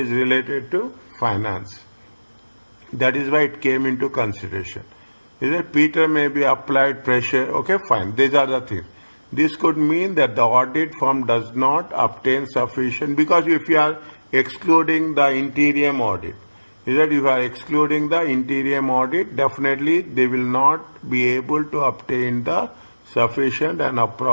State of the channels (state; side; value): inverted; both; correlation -1.00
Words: related to finance. That is why it came into consideration. Is that Peter may be applied pressure? Okay, fine. These are the things. This could mean that the audit firm does not obtain sufficient, because if you are excluding the interim audit, is that if you are excluding the interim audit, definitely they will not be able to obtain the sufficient and